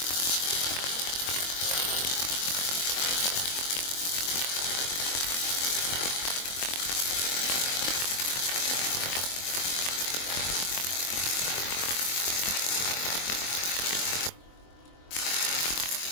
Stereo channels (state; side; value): late; right; 23 ms